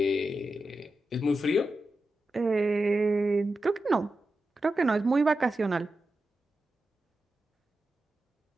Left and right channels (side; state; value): both; normal; correlation 0.91